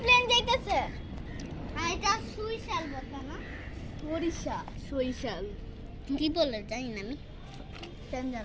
প্লেন যাইতেছে। আর এটা সুইশাল বলতে না, সরিষাল কি বলে জানি না আমি, কেন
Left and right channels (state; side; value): identical; both; correlation 1.00